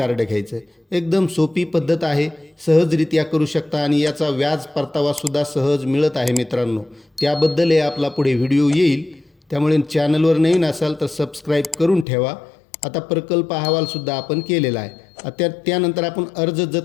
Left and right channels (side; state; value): right; drops out; at 12.1 s